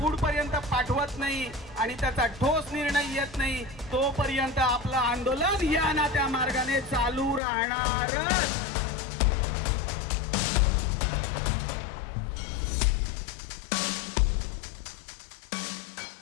पाठवत नाही आणि त्याचा ठोस निर्णय येत नाही, तोपर्यंत आपलं आंदोलन या ना त्या मार्गाने चालू राहणारच.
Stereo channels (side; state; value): right; drops out; at 7.4 s